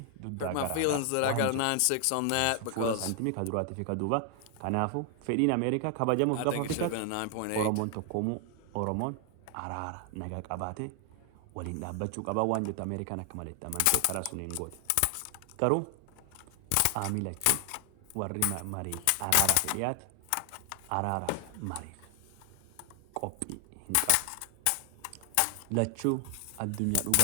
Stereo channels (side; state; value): both; different; correlation 0.00